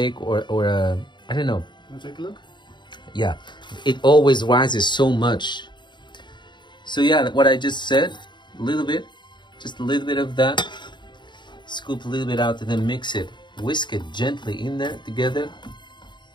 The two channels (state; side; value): late; right; 0.22 ms